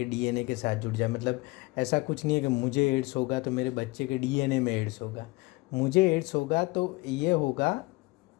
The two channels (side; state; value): right; quieter; 23.8 dB